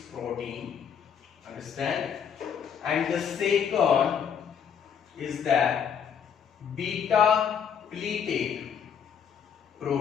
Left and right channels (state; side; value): quieter; right; 7.6 dB